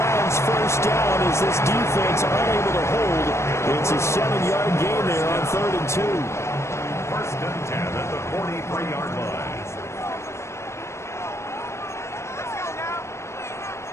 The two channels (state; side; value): late; right; 0.13 ms